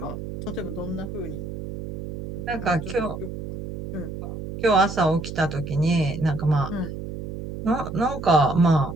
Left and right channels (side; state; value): right; noise; hum, 8 dB below the sound